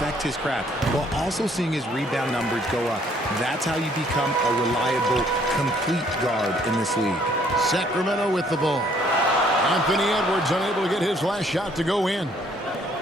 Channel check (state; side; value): normal; both; correlation 0.63